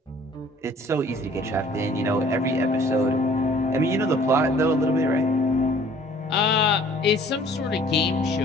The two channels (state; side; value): normal; both; correlation 0.54